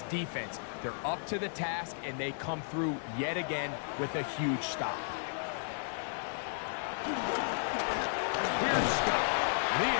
defense, they're up to the task, and they come through yet again with a huge stop. Here's Scott, and he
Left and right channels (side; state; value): right; silent; digital silence